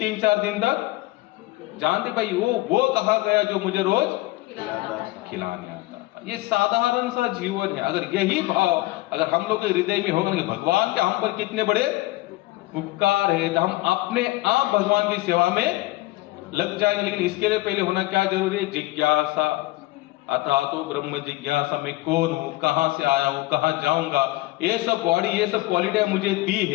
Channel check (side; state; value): right; quieter; 19.4 dB